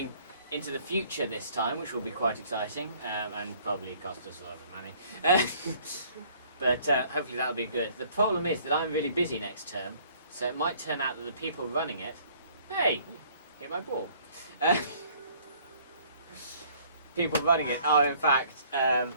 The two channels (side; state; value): both; inverted; correlation -0.58